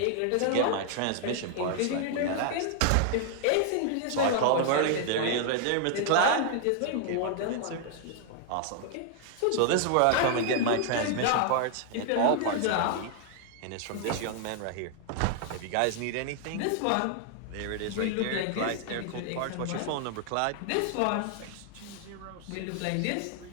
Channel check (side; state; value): both; different; correlation 0.00